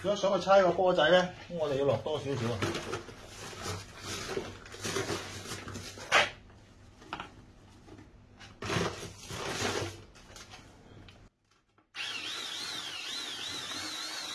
如果想去猜個波仔咧，咁我哋要落多少少啊？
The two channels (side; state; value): both; identical; correlation 1.00